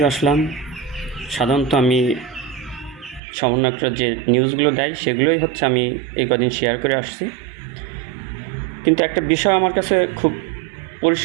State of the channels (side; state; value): left; drops out; at 3.2 s